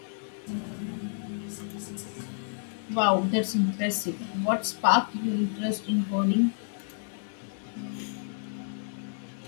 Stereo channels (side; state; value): right; silent; digital silence